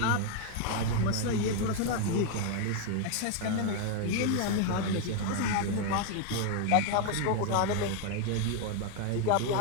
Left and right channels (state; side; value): different; both; correlation 0.01